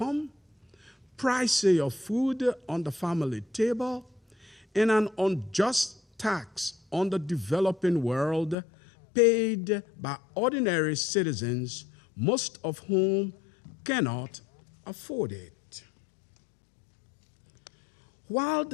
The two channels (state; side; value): drops out; right; at 8.6 s